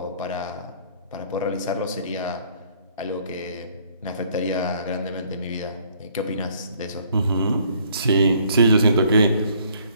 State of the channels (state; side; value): inverted; both; correlation -0.62